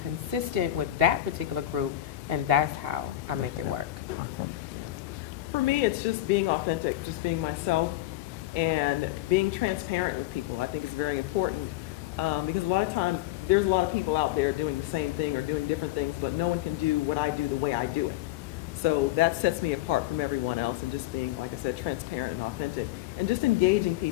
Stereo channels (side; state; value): right; quieter; 14.8 dB